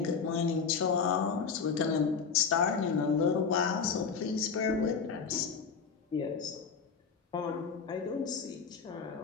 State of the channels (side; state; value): right; quieter; 5.8 dB